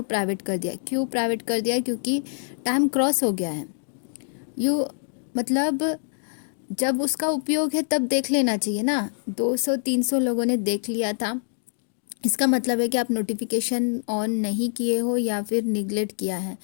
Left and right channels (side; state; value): right; silent; digital silence